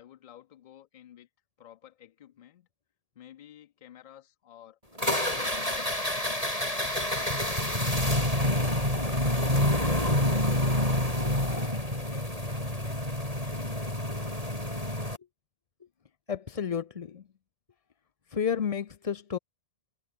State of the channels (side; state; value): left; late; 1.8 ms